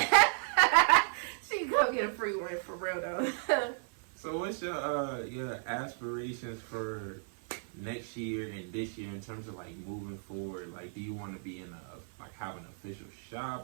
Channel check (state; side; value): silent; left; 55 dB below the other